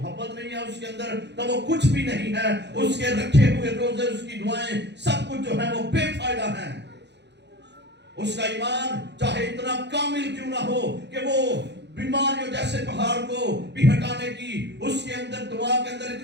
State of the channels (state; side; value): late; left; 0.50 ms